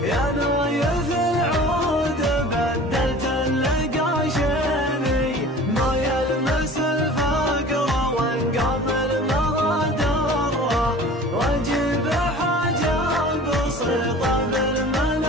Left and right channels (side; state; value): both; normal; correlation 0.42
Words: يا نايف العود بدلت القاشيني. ما يلمس الفقر وانقام المغادره، واجيب حاجه بسيطه